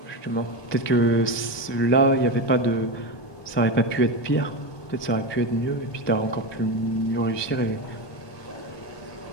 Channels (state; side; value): late; right; 1.2 ms